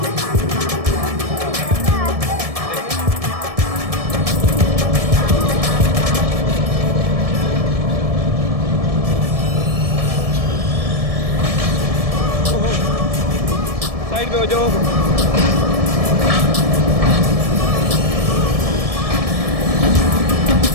साइड पे हो जाओ।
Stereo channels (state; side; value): late; left; 1.7 ms